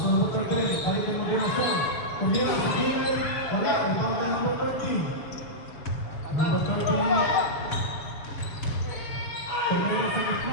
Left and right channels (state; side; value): late; right; 7.2 ms